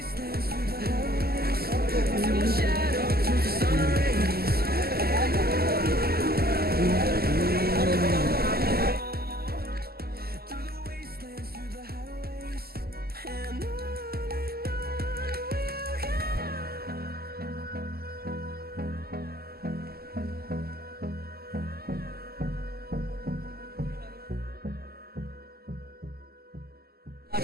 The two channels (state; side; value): late; left; 0.45 ms